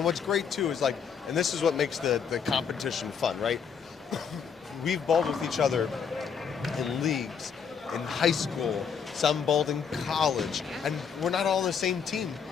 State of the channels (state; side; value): quieter; right; 6.7 dB